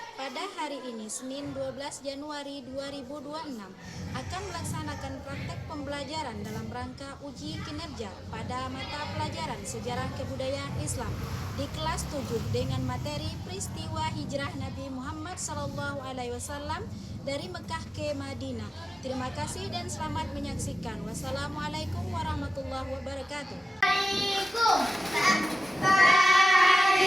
Pada hari ini Senin 12 Januari 2026 akan melaksanakan praktek pembelajaran dalam rangka uji kinerja pada mata pelajaran Sejarah Kebudayaan Islam di kelas 7 dengan materi peristiwa hijrah Nabi Muhammad SAW dari Mekah ke Madinah. Terima kasih dan selamat menyaksikan. Wassalamualaikum warahmatullahi wabarakatuh.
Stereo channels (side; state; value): both; normal; correlation 0.95